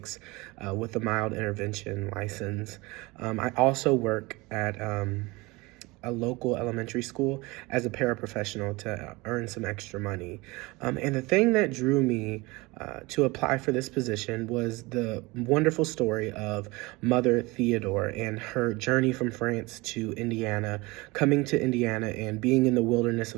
with a mild intervention license. I also work at a local elementary school as a paraprofessional to earn some extra money. And the thing that drew me to apply for this position was the wonderful story of Mother Theodore and her journey from France to Indiana, coming to Indiana and being in the wilderness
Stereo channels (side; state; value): left; quieter; 23.5 dB